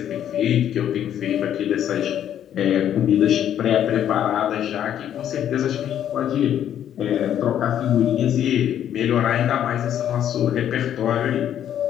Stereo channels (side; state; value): right; quieter; 10.3 dB